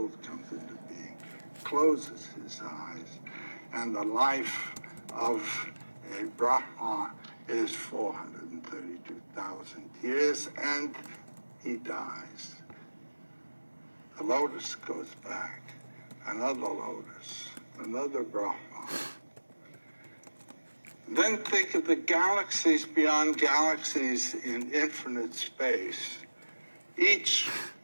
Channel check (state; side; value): inverted; both; correlation -1.00